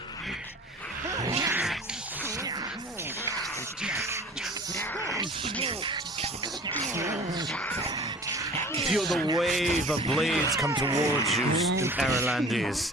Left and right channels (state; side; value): normal; both; correlation 0.44